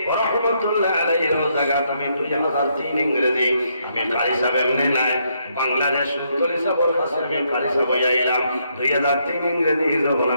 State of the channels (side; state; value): both; inverted; correlation -0.75